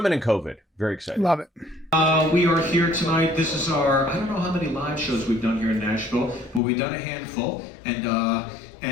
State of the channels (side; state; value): right; drops out; at 6.6 s